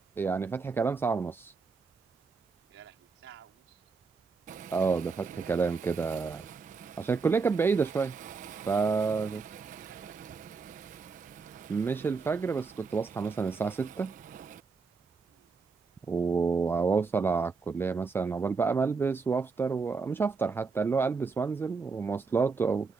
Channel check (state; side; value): quieter; left; 4.8 dB